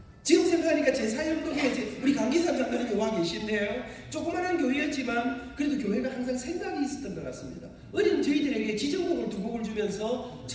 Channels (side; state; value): both; identical; correlation 1.00